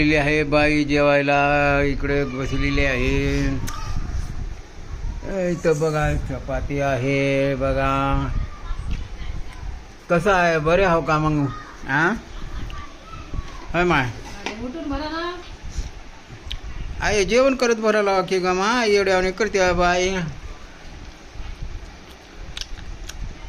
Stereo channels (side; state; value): both; identical; correlation 1.00